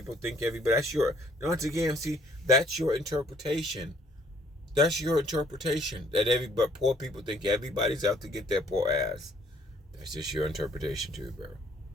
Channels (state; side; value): normal; both; correlation 0.62